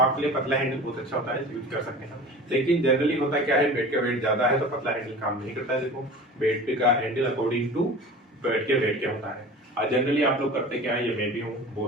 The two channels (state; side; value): normal; both; correlation 0.38